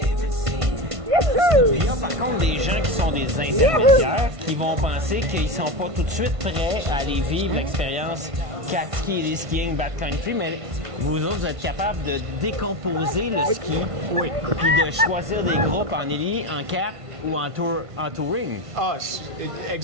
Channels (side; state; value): left; late; 1.5 ms